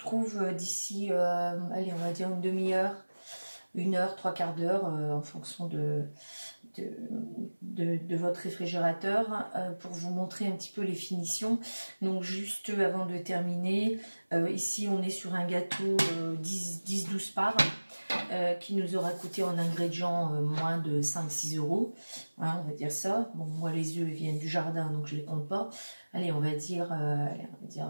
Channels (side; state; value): both; inverted; correlation -1.00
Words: d'ici, allez, on va dire une demi-heure, 1 heure, 3/4 d'heure, en fonction de votre réfrigérateur, pour vous montrer un petit peu les finitions. Donc juste avant de terminer, ici on est sur un gâteau 10-12 parts. Qui nous aura coûté en ingrédients moins de 5-6 euros, hein, on va dire ça. Bon, moi les œufs viennent du jardin donc je les compte pas. Allez, on va dire